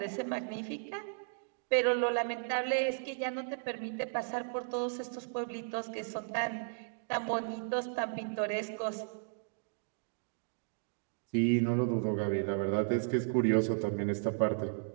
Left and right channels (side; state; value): left; silent; digital silence